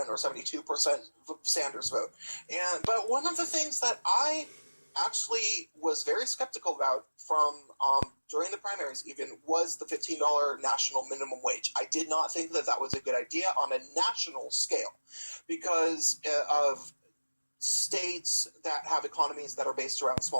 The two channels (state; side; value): inverted; both; correlation -1.00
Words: 72% Sanders vote. But one of the things that I actually was very skeptical about from during the primaries even was the $15 national minimum wage. I did not think that was a good idea on a national scale because of states that have economies that are based around